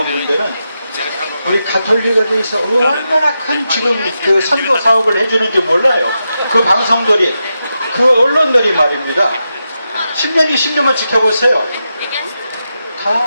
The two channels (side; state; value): both; inverted; correlation -0.88